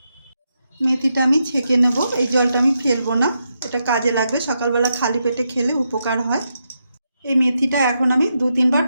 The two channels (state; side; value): inverted; both; correlation -0.84